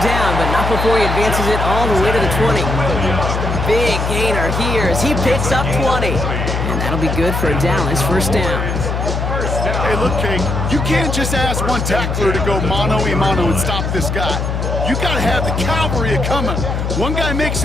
down, but not before he advances it all the way to the 20. Big gainer here as he picks up 20. And that'll be good for a Dallas 1st down. Hey, look, Kate, you can't just ask one tackler to go mano-a-mano and stop this guy. You got to have the cavalry coming. One guy makes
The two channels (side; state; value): left; noise; hum, 1 dB below the sound